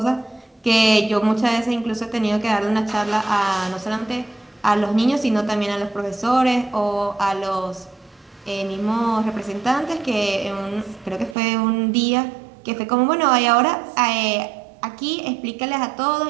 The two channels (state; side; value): drops out; left; at 11.4 s